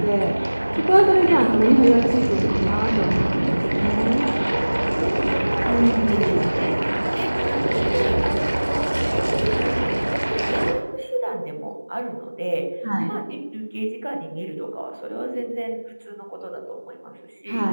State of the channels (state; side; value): inverted; both; correlation -1.00